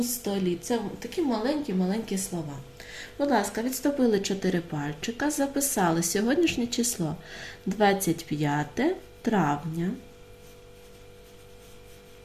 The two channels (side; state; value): both; identical; correlation 1.00